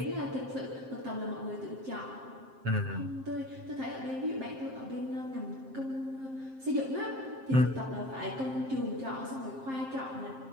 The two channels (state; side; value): late; left; 7.6 ms